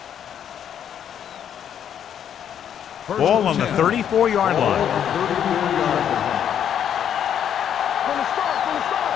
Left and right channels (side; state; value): right; quieter; 9.2 dB